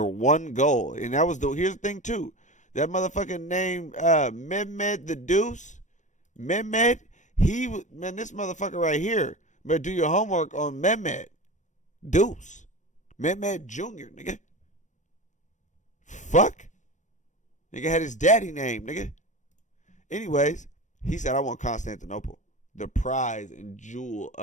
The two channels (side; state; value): right; late; 0.35 ms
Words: one goal. And that was here's the thing too. That motherfucking name, Mehmed the Deuce. Mehmed, man, this motherfucker right here. Better do your homework on Mehmed Deuce. Mehmed Jr., nigga. Fuck. Nigga had his daddy name, nigga. Anyways, he said, I want Constantinople. The prize and jewel